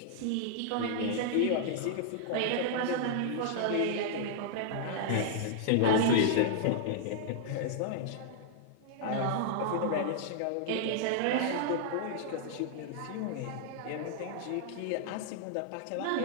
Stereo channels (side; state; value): both; different; correlation -0.01